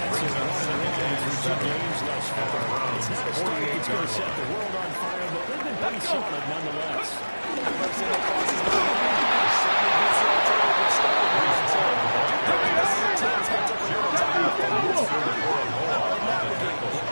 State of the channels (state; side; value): inverted; both; correlation -1.00